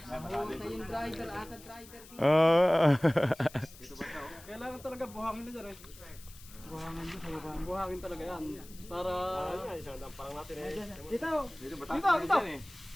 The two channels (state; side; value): noise; left; hiss, 20 dB below the sound